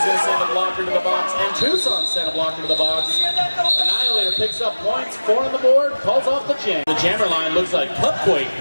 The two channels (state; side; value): inverted; both; correlation -1.00